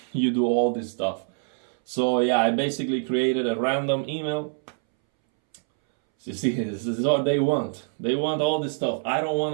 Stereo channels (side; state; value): left; silent; 62 dB below the other